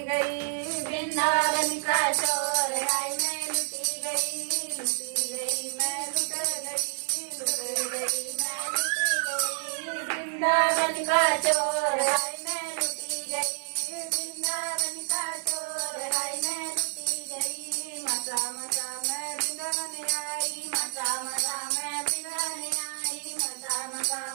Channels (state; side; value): silent; left; 59 dB below the other